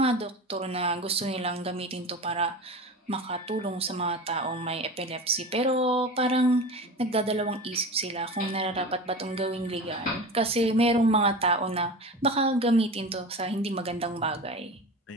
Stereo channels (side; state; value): both; normal; correlation 0.30